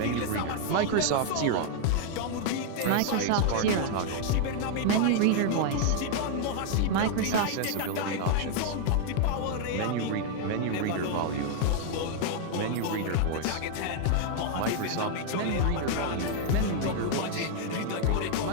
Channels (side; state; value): both; different; correlation 0.00